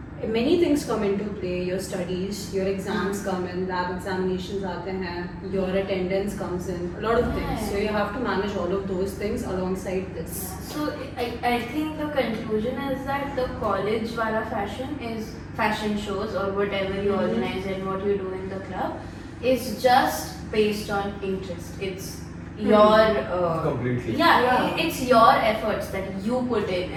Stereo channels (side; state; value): both; identical; correlation 1.00